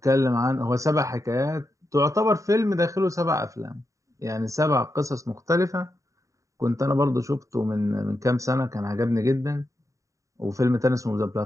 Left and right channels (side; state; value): left; late; 0.16 ms